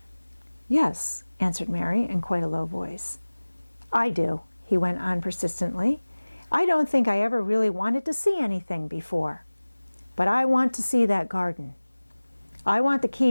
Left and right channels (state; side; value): inverted; both; correlation -1.00